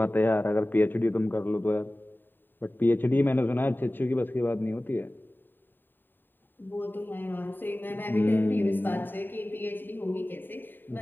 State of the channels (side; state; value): right; late; 0.093 ms